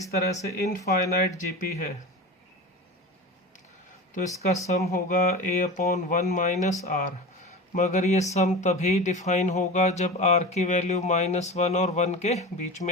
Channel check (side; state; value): both; normal; correlation 0.29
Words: तरह से इनफाइनाइट जीपी है तो इसका सम होगा a/1 - r। मगर ये सम तभी डिफाइन होगा जब r की वैल्यू -1 और 1 के बीच